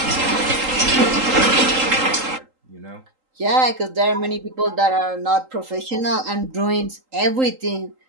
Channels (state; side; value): late; left; 3.8 ms